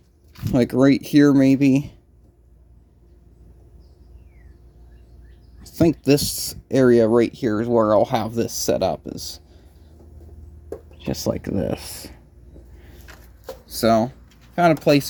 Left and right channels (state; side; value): identical; both; correlation 1.00